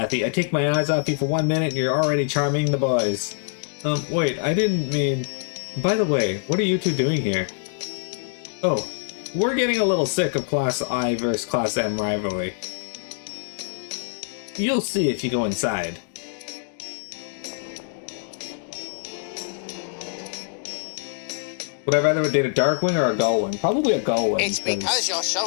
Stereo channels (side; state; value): right; silent; digital silence